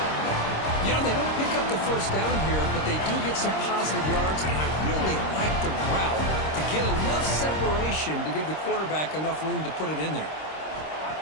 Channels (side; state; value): right; late; 26 ms